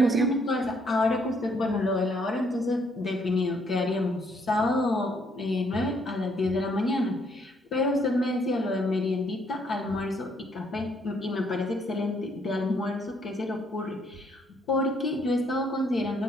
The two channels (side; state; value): both; normal; correlation 0.69